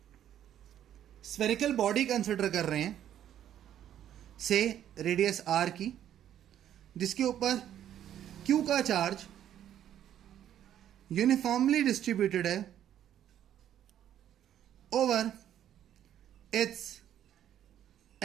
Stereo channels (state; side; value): quieter; left; 10.8 dB